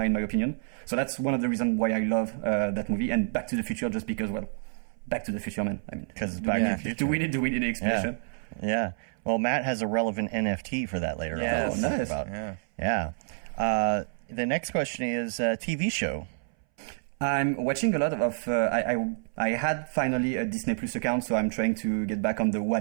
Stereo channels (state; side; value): silent; left; 59 dB below the other